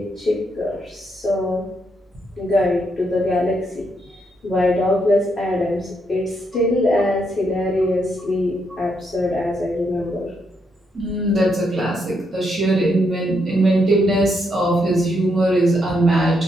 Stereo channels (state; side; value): normal; both; correlation 0.78